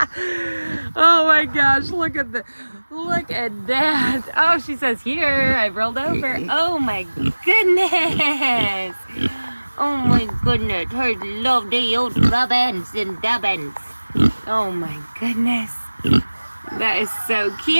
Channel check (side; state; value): both; inverted; correlation -1.00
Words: Oh my gosh, look at that. Oh, she says, here, I rolled over. Oh my goodness. Oh my goodness, her lovely old rubbins and dubbins. Oh my goodness. That is so